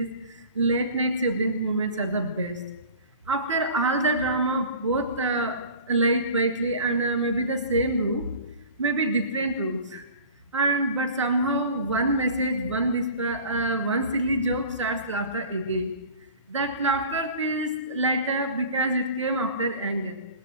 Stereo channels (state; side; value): inverted; both; correlation -0.42